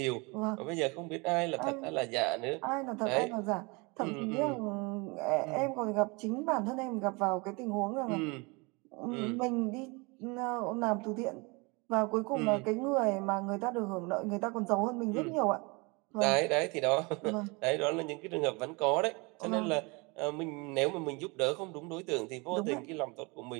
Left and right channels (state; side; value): quieter; left; 28.2 dB